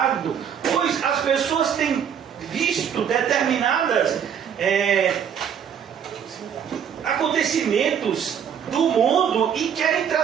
Pois as pessoas têm visto determinadas acontecimentos do mundo e querem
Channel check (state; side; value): quieter; left; 8.2 dB